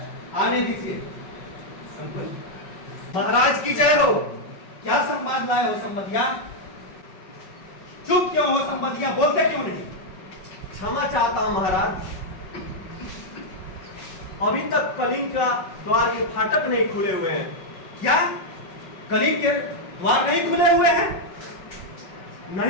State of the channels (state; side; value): late; right; 5.4 ms